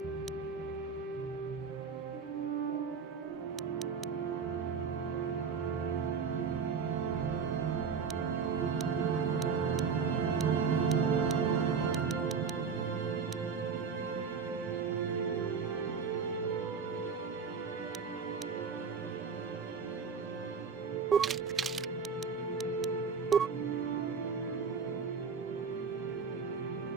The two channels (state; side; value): quieter; left; 5.8 dB